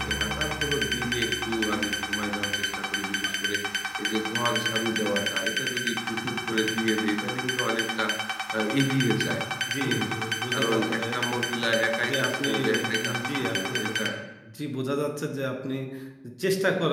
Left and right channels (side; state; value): both; identical; correlation 1.00